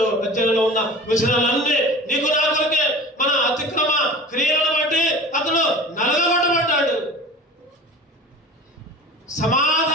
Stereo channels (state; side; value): normal; both; correlation 0.38